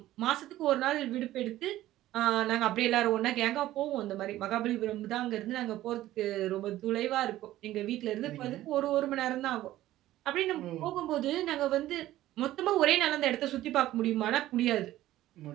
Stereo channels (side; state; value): left; quieter; 14.7 dB